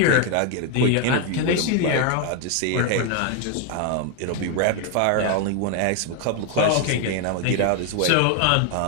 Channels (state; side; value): different; both; correlation 0.01